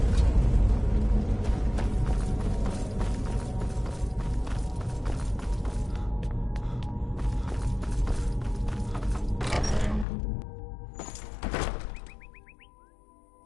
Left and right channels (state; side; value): drops out; right; at 10.1 s